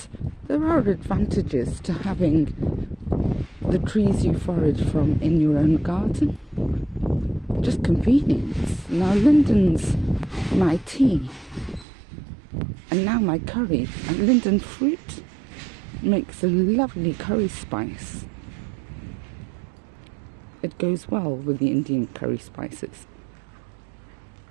there are advantages to having the trees you forage from in your own garden. Just convenience. Now linden's my tea, and now my curry, and linden fruit makes a lovely curry spice. It goes well with the Indian curry spices.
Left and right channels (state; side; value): drops out; left; at 11.9 s